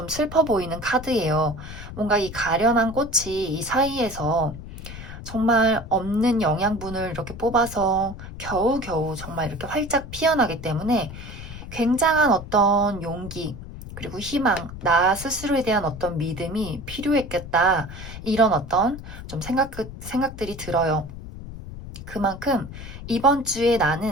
슬퍼 보이는 카드예요. 뭔가 이 가련한 꽃이 이 사이에서 정말 없는 영양분을 이렇게 뽑아서 겨우겨우 정말 이렇게 활짝 피어나기 때문에 굉장한 어떤 용기, 그리고 희망, 나 스스로에 대한 어떤 믿음이 필요했겠다. 이런 어떤 좀 생각들이 들어요. 그만큼 이번 주에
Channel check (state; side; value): noise; left; rumble, 12 dB below the sound